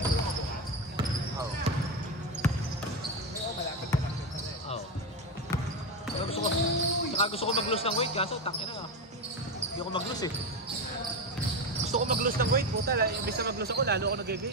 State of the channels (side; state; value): both; normal; correlation 0.14